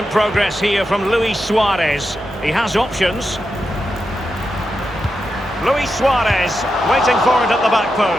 progress here from Luis Suarez. He has options. Luis Suarez waiting for it at the back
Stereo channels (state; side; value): normal; both; correlation 0.88